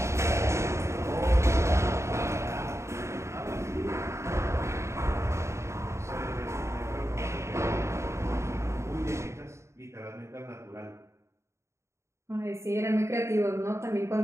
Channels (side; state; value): left; late; 0.14 ms